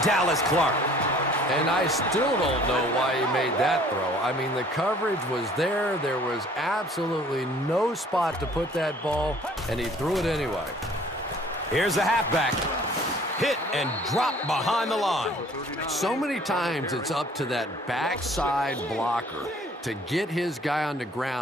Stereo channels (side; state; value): both; normal; correlation 0.54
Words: Dallas Clark. And I still don't know why he made that throw. I mean, the coverage was there. There was absolutely no spot to put that ball, and he threw it anyway. Here's a halfback. Hit and drop behind the line. So many times it's up to that backside blocker to get his guy on the